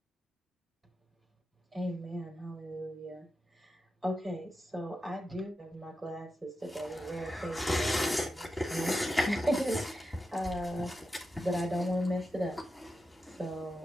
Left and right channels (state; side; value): normal; both; correlation 0.89